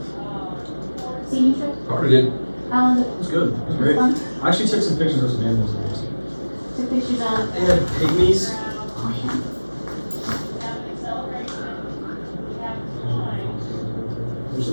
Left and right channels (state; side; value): inverted; both; correlation -1.00